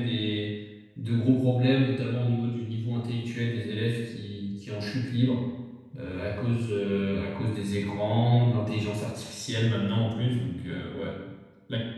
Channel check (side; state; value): both; identical; correlation 1.00